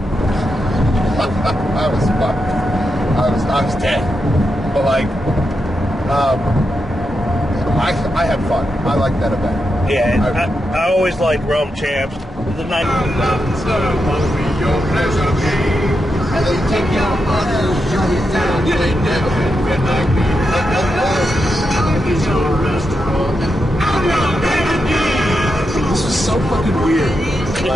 I was fucked. I was dead. But like, I had fun. I liked that event. Yeah, I always liked Realm Champs. The night. This was so fucking weird.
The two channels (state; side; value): normal; both; correlation 0.86